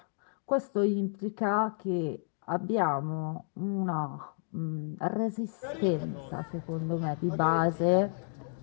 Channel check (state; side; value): silent; right; digital silence